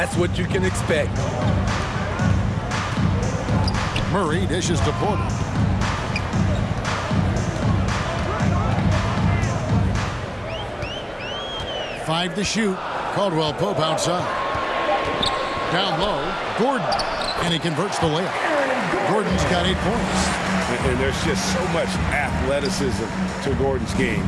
what you can expect. Murray dishes to Porter. Five to shoot. Caldwell Pope outside. Down low, Gordon. And he converts the layup. Gordon's got 8 points. And there's just so much athleticism to Gordon's game.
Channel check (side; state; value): both; identical; correlation 1.00